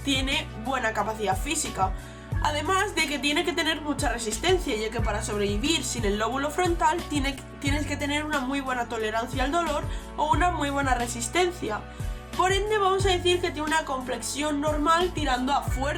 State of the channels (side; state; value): both; identical; correlation 1.00